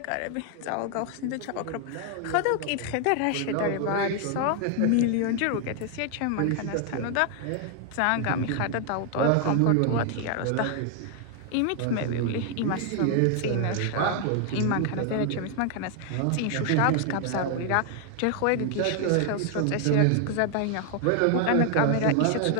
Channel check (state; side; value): different; both; correlation 0.00